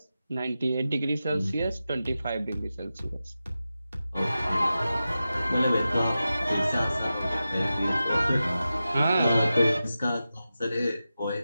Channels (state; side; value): inverted; both; correlation -0.93